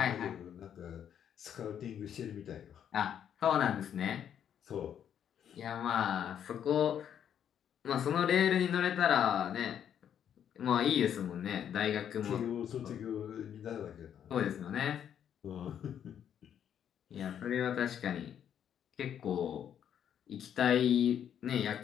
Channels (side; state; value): right; quieter; 9.2 dB